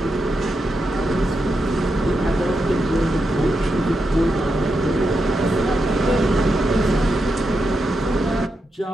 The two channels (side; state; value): both; normal; correlation 0.86